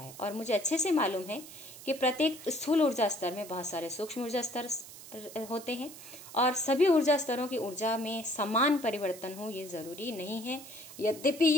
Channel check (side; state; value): right; noise; hiss, 16 dB below the sound